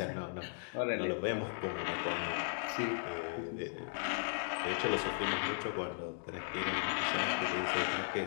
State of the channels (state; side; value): silent; right; digital silence